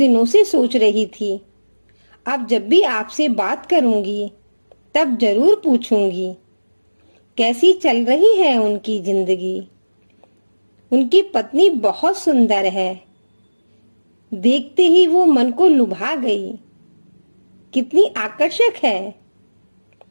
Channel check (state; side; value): inverted; both; correlation -1.00